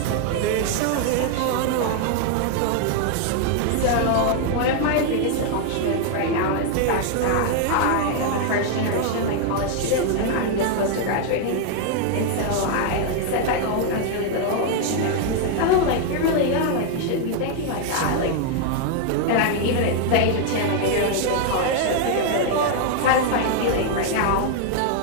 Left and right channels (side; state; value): both; different; correlation 0.00